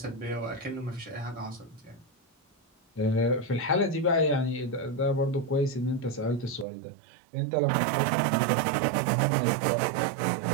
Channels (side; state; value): left; drops out; at 6.7 s